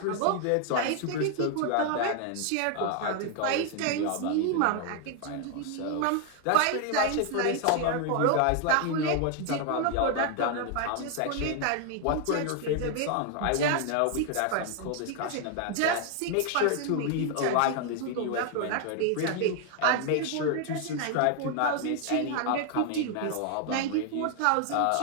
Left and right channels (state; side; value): different; both; correlation 0.00